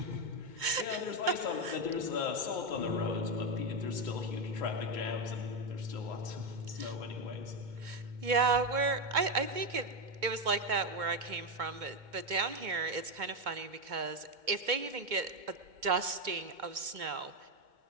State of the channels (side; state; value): left; late; 2.2 ms